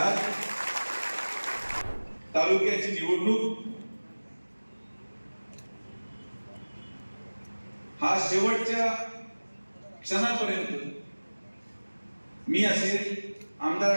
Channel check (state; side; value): inverted; both; correlation -1.00